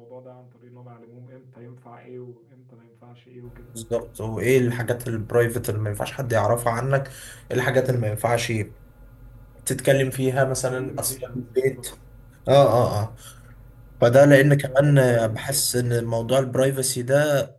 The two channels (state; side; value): identical; both; correlation 1.00